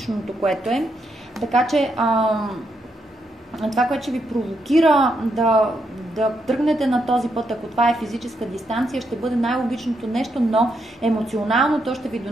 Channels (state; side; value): normal; both; correlation 0.79